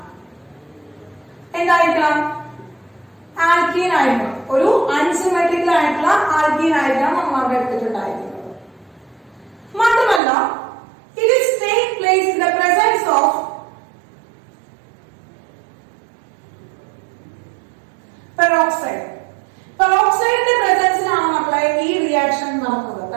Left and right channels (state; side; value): drops out; left; at 10.2 s